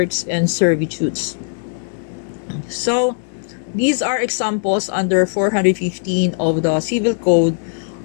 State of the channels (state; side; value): silent; right; 67 dB below the other